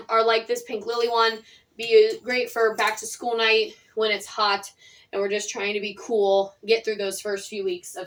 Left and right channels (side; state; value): both; identical; correlation 1.00